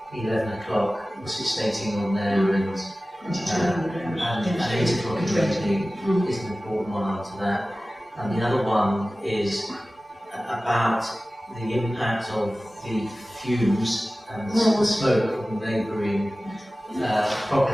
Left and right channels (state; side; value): normal; both; correlation 0.97